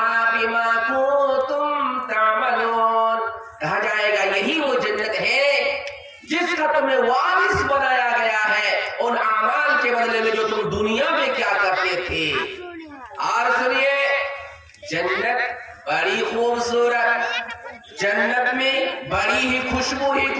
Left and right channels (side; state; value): both; identical; correlation 1.00